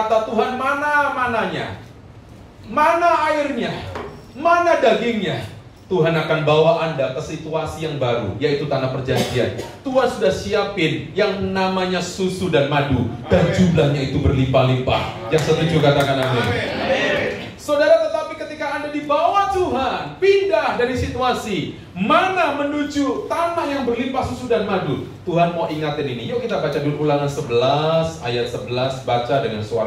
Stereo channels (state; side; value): identical; both; correlation 1.00